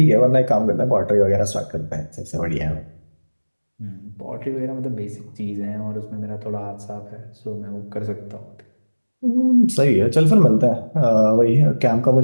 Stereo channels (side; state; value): both; inverted; correlation -1.00